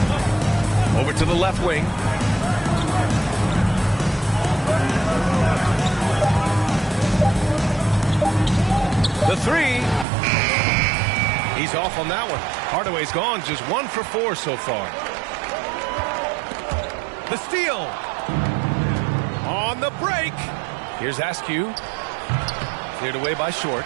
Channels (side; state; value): left; drops out; at 10.1 s